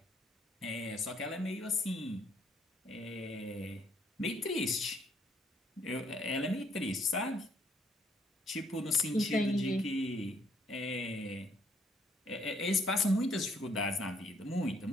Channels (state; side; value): normal; both; correlation 0.66